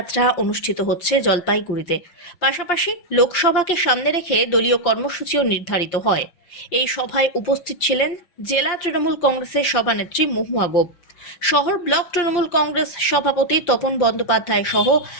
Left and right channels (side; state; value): right; late; 5.7 ms